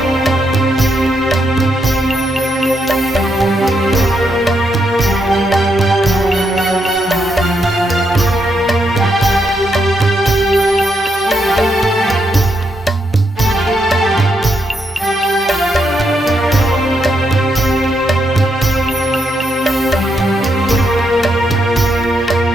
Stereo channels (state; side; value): normal; both; correlation 0.79